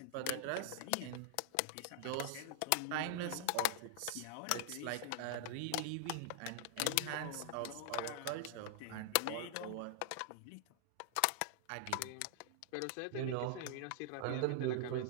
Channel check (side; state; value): both; different; correlation 0.00